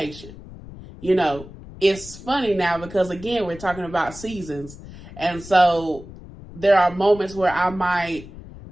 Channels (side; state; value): left; noise; rumble, 16 dB below the sound